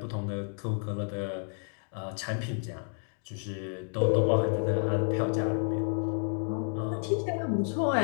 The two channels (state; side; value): silent; right; 57 dB below the other